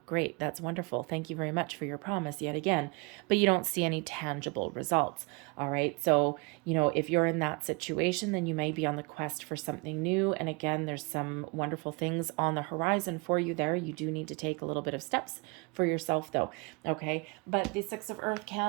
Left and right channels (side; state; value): left; quieter; 29.7 dB